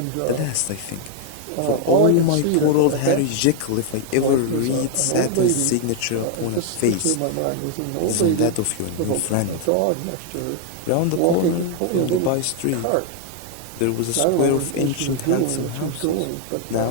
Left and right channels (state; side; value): different; both; correlation 0.00